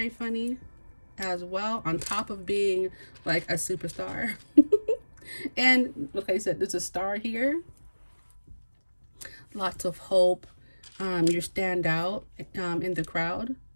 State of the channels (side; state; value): both; inverted; correlation -1.00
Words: funny. as well, on top of being like a superstar. And like I said, there's a star here, lots of hope. You stand out in the crowd